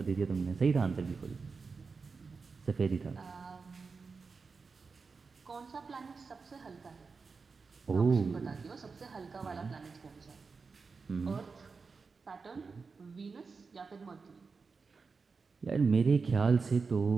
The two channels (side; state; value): left; quieter; 4.7 dB